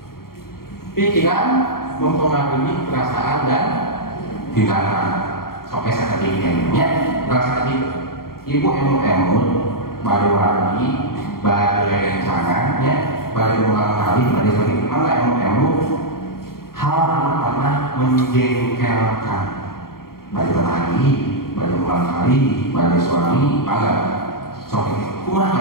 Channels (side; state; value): right; late; 0.93 ms